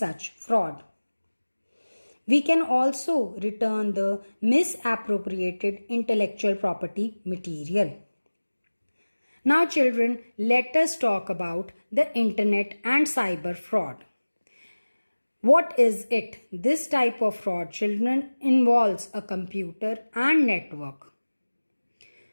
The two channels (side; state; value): both; inverted; correlation -1.00